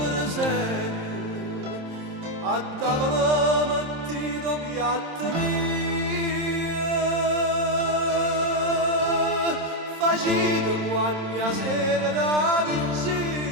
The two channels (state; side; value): late; left; 27 ms